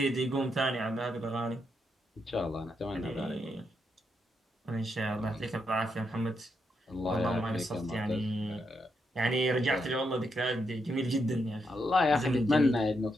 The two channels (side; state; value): both; normal; correlation 0.81